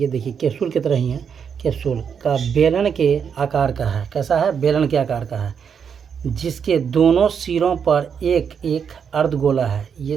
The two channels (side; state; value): left; quieter; 7.1 dB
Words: देखिए कैप्सूल की तरह ही है, कैप्सूल का बेलन के आकार का है, कैसा है, बेलन के आकार का है, जिसके दोनों सिरों पर एक एक अर्धगोला है।